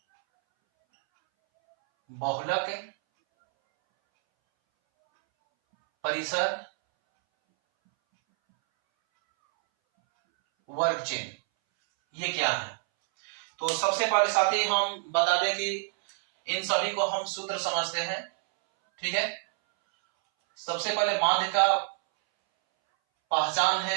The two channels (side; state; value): left; silent; 60 dB below the other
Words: बहुलक परिसर वर्ग चिन्ह ये क्या है। तो सबसे पहले साथी हम बता दें कि इन सभी को हम सूत्र समझते हैं। ठीक है, सबसे पहले माध्य का पहचान